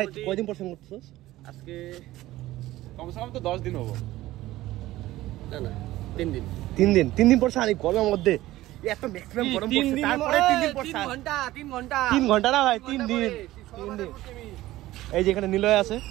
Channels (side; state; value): left; quieter; 16.3 dB